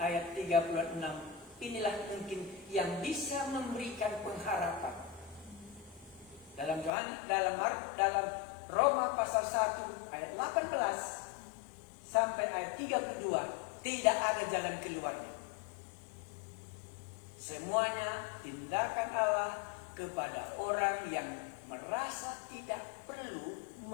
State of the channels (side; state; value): right; drops out; at 6.9 s